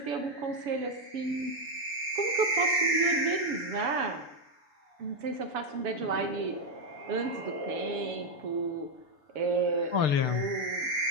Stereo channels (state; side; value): late; left; 7.0 ms